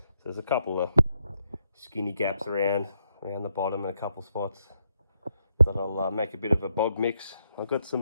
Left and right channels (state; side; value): inverted; both; correlation -0.79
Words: there's a couple of skinny gaps around the bottom and a couple spots that I'll make a bit of a bog mix. I've got